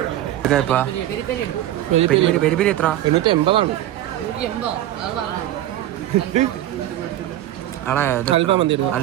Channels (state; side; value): quieter; left; 13.5 dB